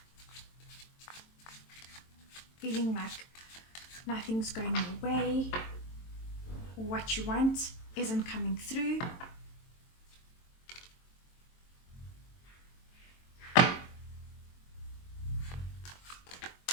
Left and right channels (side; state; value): right; late; 23 ms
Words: feeling like nothing's going your way, or what you want isn't coming through.